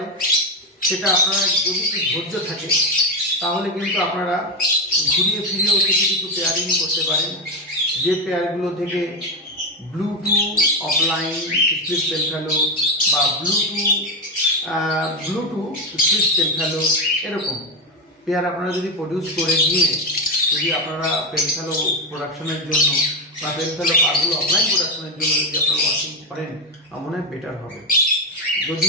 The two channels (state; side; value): normal; both; correlation 0.11